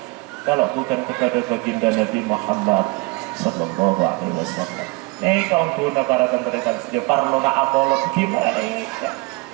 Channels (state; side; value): quieter; left; 26.4 dB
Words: kalau bukan kepada baginda Nabi Muhammad Sallallahu Alaihi Wasallam. Kaum guna para tentara saja parlo na apolog gimana ya?